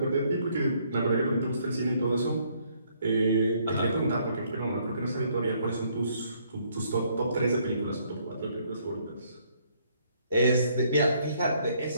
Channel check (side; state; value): both; inverted; correlation -0.68